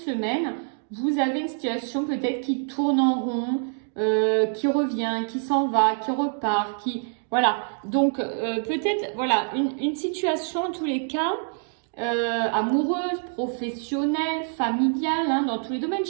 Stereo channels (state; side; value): silent; left; 61 dB below the other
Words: vous avez une situation peut-être qui tourne en rond, qui revient, qui s'en va, qui repart, qui... Voilà. Donc, peut-être, voilà, une situation en tous les cas... amoureuse, professionnelle, familiale, hein, dans tous les domaines.